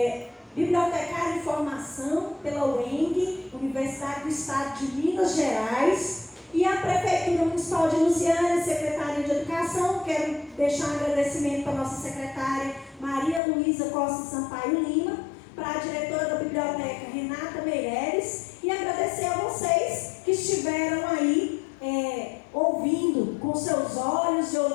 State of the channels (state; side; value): drops out; right; at 13.4 s